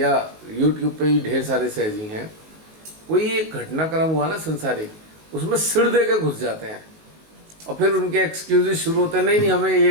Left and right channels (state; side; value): late; left; 19 ms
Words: YouTube पे भी ढेर सारे सहजी हैं, कोई एक घटनाक्रम हुआ ना संसारिक, उसमें सिर दे के घुस जाते हैं और फिर उनके एक्सक्यूजेस शुरू होते हैं, नहीं हमें